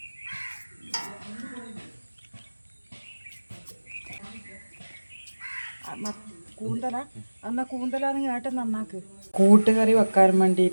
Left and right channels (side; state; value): both; inverted; correlation -1.00